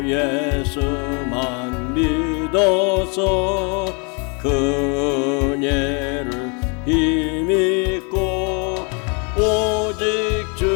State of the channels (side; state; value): right; quieter; 34.6 dB